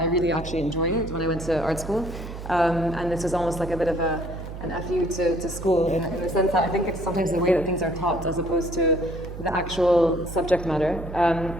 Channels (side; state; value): right; noise; hum, 10 dB below the sound